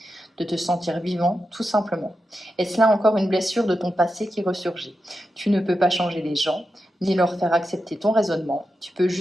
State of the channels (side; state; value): both; normal; correlation 0.89